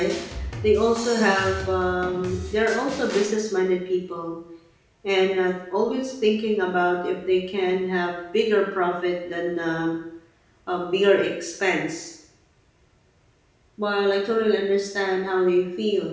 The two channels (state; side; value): identical; both; correlation 1.00